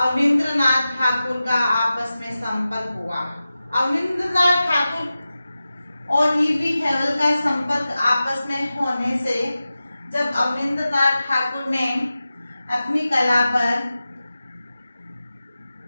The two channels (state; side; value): inverted; both; correlation -0.94